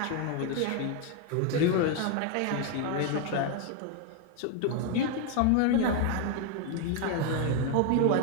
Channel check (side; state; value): both; different; correlation 0.01